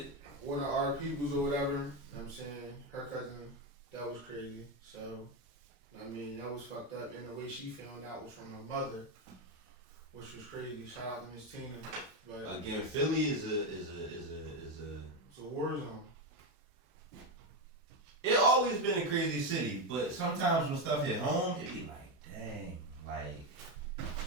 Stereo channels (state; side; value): normal; both; correlation 0.10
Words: One of our peoples or whatever. You know what I'm saying? Her cousin. That was crazy. So, I mean, that was fucked up. And the way she found out was from her mother, which was crazy. Shout out to Miss Tina. But again, Philly is a it's a war zone. It always been a crazy city, but sometimes when stuff hit home, it be like, dang, like.